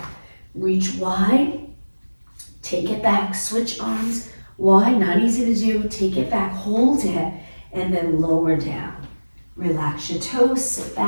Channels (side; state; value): both; inverted; correlation -1.00